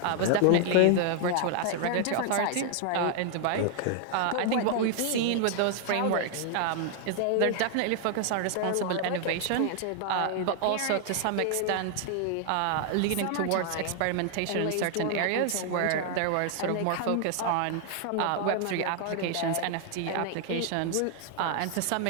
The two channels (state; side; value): different; both; correlation 0.00